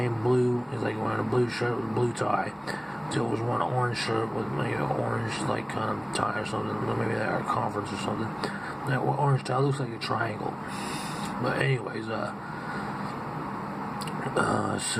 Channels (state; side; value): identical; both; correlation 1.00